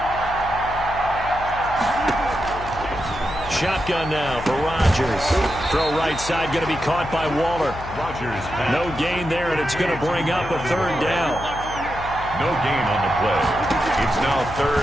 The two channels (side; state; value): left; noise; hum, 12 dB below the sound